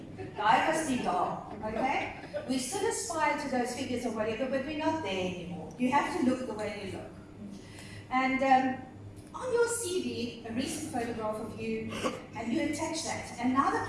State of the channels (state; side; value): identical; both; correlation 1.00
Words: Guy must be dark, okay? We still aspire to those figures or whatever, but we're not there anymore. You have to look the way you look. And on your CV, a recent photograph of you, and you attach that. And now the